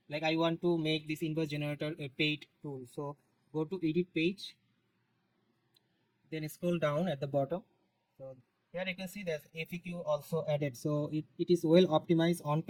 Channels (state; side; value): identical; both; correlation 1.00